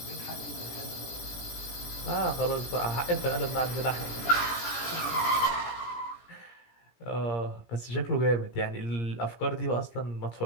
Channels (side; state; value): right; late; 17 ms